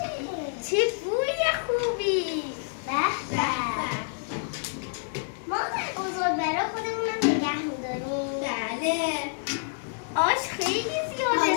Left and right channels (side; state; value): right; silent; digital silence